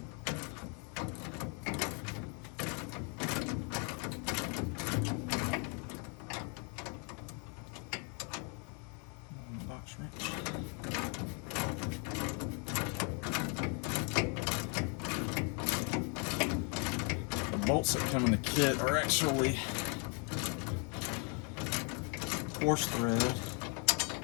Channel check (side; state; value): right; quieter; 36.6 dB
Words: Box wrench. The bolts that come in the kit are actually coarse thread,